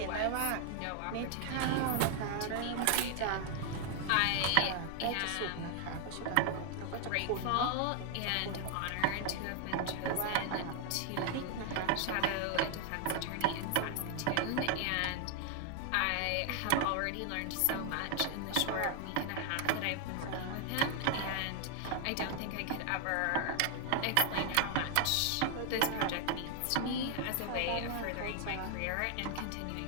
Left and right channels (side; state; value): both; different; correlation 0.00